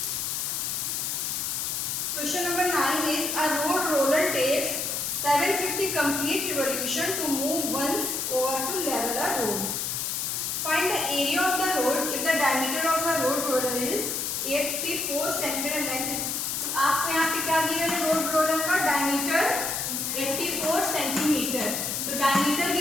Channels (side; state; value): left; noise; hiss, 1 dB below the sound